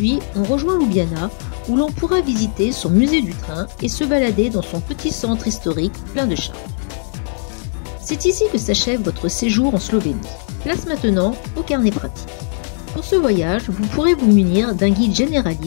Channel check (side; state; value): right; silent; digital silence